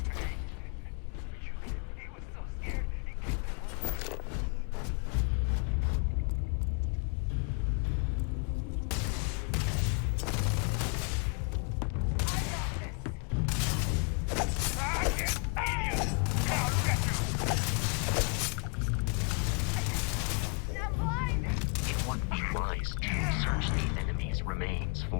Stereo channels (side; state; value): right; quieter; 36.3 dB